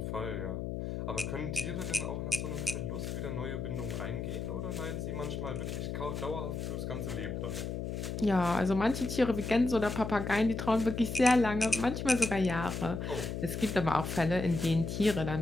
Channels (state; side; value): noise; left; hum, 4 dB below the sound